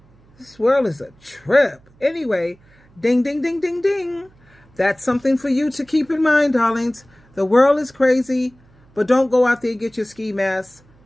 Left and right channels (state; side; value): noise; right; hum, 30 dB below the sound